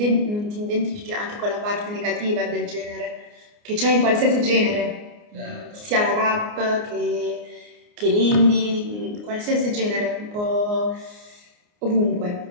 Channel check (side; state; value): left; late; 29 ms